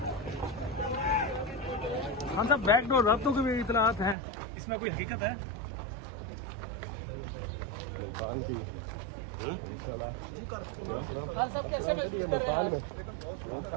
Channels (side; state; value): left; drops out; at 4.2 s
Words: खान साहब, बैकडोर रातों की भी इतलात हैं, इसमें कोई हकीकत है?